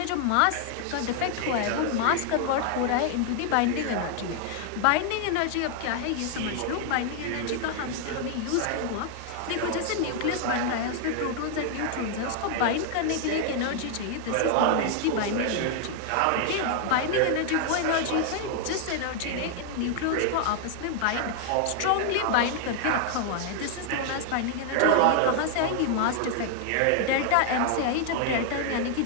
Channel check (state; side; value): different; both; correlation 0.00